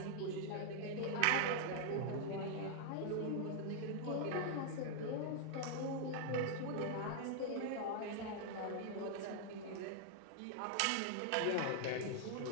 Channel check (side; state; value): both; different; correlation 0.00